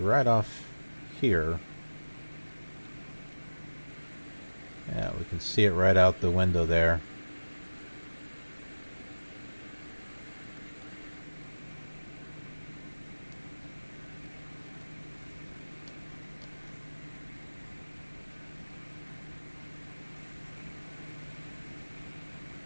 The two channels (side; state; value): both; inverted; correlation -1.00